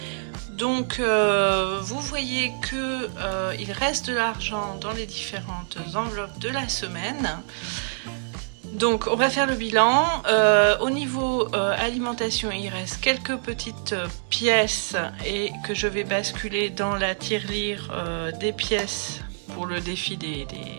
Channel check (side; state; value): left; silent; digital silence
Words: Donc vous voyez que il reste de l'argent dans les différentes enveloppes de la semaine. Donc on va faire le bilan. Au niveau alimentation, il reste quelques petites pièces et que je vais basculer dans la tirelire des pièces pour le défi des